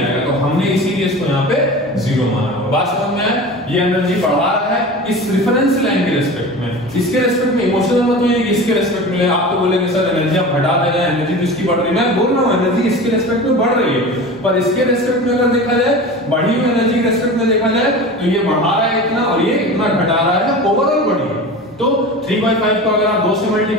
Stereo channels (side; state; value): both; normal; correlation 0.33